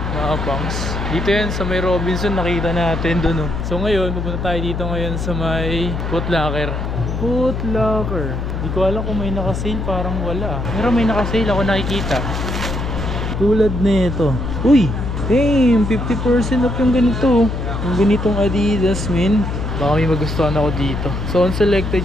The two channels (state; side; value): noise; left; hum, 3 dB below the sound